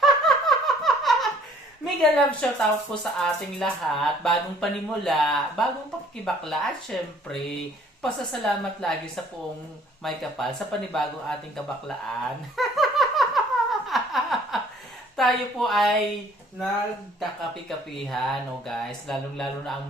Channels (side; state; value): both; normal; correlation 0.58